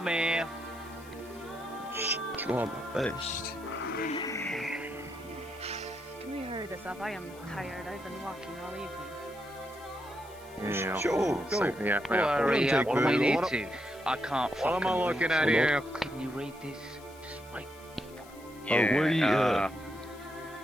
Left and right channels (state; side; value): noise; left; hiss, 23 dB below the sound